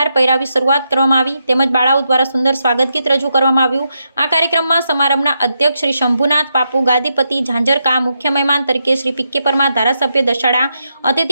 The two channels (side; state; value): both; inverted; correlation -0.83